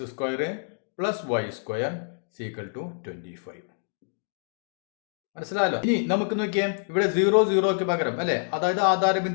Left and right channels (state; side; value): silent; right; digital silence